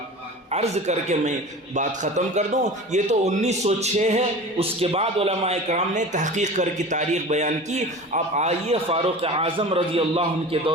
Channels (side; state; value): both; normal; correlation 0.35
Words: عرض کر کے میں بات ختم کر دوں، یہ تو 1906 ہے، اس کے بعد علماء کرام نے تحقیق کر کی تاریخ بیان کی۔ اب آئیے فاروق اعظم رضی اللہ عنہ کے